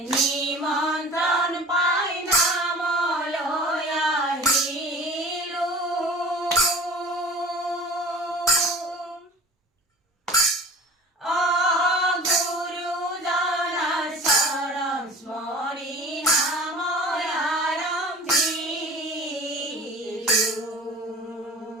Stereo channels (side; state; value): both; normal; correlation 0.40